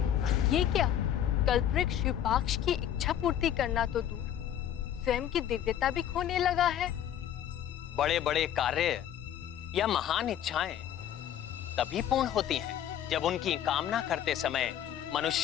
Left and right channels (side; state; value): right; quieter; 10.6 dB